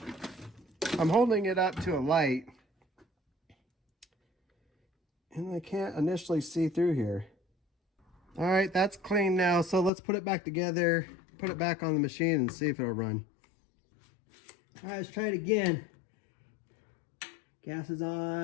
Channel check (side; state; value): right; drops out; at 9.9 s